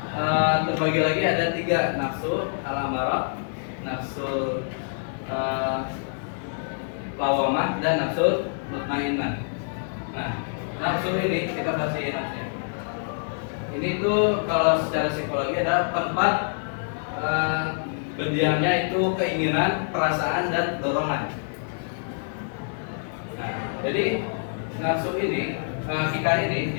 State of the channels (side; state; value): right; silent; digital silence